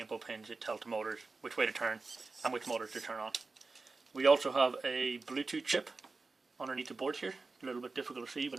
input pins, it tells the motors which way to turn and which motors to turn on. We also have a Bluetooth chip underneath the board here. A little bit difficult to see,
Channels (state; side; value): quieter; left; 3.9 dB